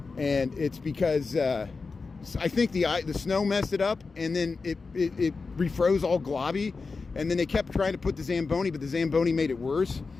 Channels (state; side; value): quieter; right; 4.3 dB